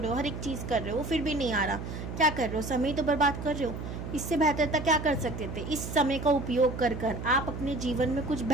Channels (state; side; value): noise; right; hum, 7 dB below the sound